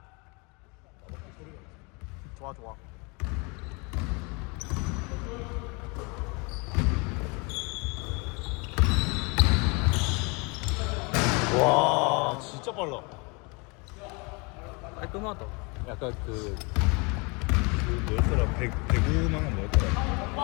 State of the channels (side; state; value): right; quieter; 30.1 dB